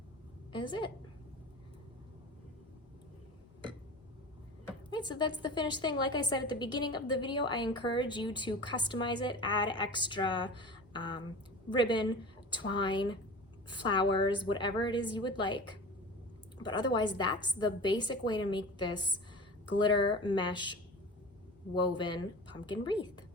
is it. Right, so that's the finished thing. Like I said at the beginning of the video, I encourage you to customize it, add extra ribbon, twine, flowers, whatever it is you would like. But otherwise, that's the basic way to make this glitter mesh woven pumpkin wreath.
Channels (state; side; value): normal; both; correlation 0.34